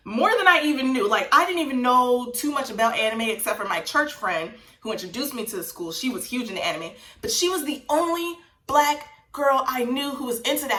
More than I even knew. Like, I didn't even know too much about anime except for my church friend who introduced me to the school. She was huge into anime, but she was the only Black girl I knew who was into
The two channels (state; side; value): identical; both; correlation 1.00